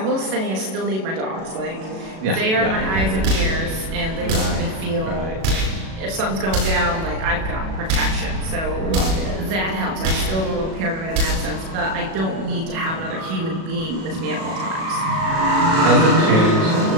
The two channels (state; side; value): late; left; 37 ms